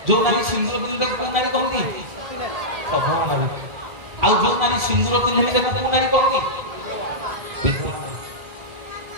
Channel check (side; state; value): left; late; 1.7 ms